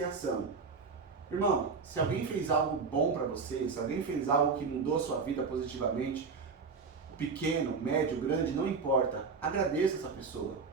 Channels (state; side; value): quieter; left; 4.9 dB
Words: Irmão, se alguém fez algo bom para você, se alguém fez algo que mudou a sua vida positivamente, pequeno, médio, grande, não importa, agradeça essa pessoa.